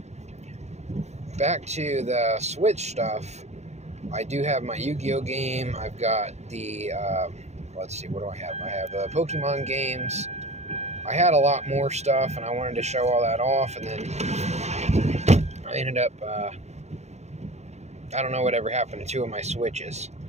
Back to the Switch stuff, I do have my Yu-Gi-Oh game. I've got the, let's see, what do I have? I have the Pokemon games. I had a lot more stuff, and I wanted to show all that off, and then I ended up, I don't know whatever happened to 2 of my Switches.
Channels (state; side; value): late; left; 0.32 ms